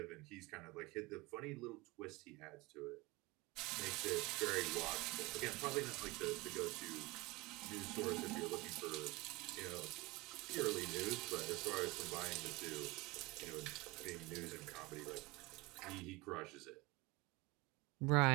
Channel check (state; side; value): quieter; left; 23.2 dB